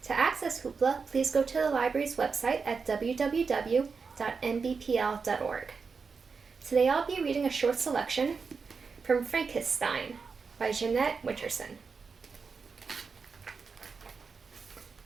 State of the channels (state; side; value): quieter; left; 5.1 dB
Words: To access Hoopla, please go to the library's website at www.nbpl.org. Today I'll be reading a short selection from Frankissstein by Jeanette Winterson.